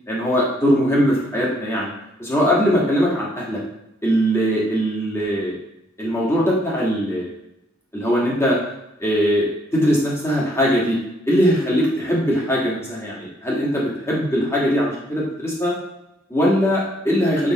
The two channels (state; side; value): normal; both; correlation 0.68